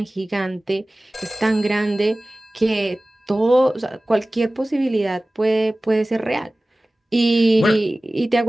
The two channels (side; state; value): both; normal; correlation 0.98